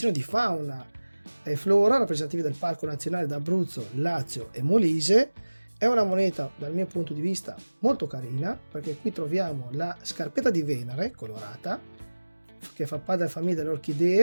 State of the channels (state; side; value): inverted; both; correlation -1.00